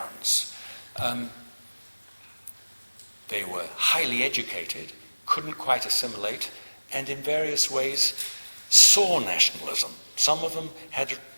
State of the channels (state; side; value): inverted; both; correlation -1.00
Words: They were highly educated, couldn't quite assimilate, and in various ways saw nationalism. Some of them had a